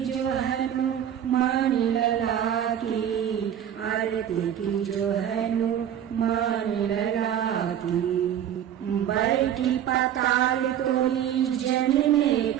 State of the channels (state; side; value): quieter; left; 10.1 dB